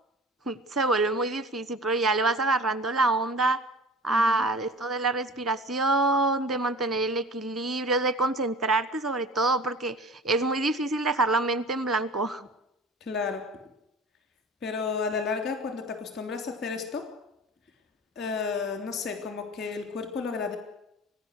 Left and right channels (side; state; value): both; normal; correlation 0.40